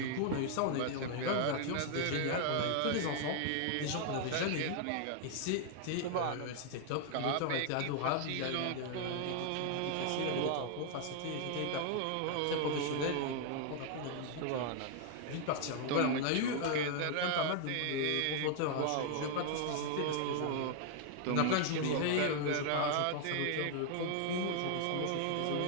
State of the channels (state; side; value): different; both; correlation 0.00